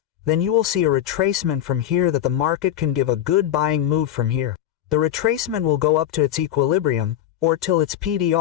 then you will see a retracement from here that the market can give a good buying move from here. The retracement will go up to its equilibrium, or till its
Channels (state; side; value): quieter; right; 11.6 dB